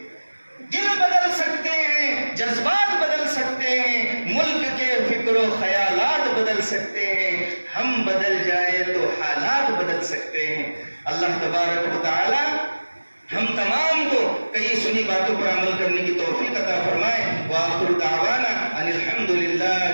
دل بدل سکتے ہیں، جذبات بدل سکتے ہیں، ملک کے فکر و خیالات بدل سکتے ہیں. ہم بدل جائے تو حالات بدل سکتے ہیں. اللہ تبارک و تعالی ہم تمام کو کئی سنی باتوں پر عمل کرنے کی توفیق عطا فرمائے. وآخر دعوانا ان الحمد للہ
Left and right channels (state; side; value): inverted; both; correlation -1.00